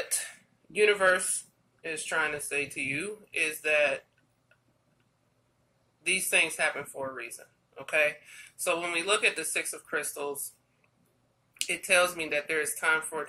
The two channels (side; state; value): both; identical; correlation 1.00